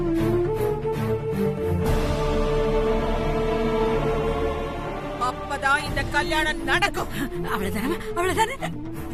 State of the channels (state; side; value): identical; both; correlation 1.00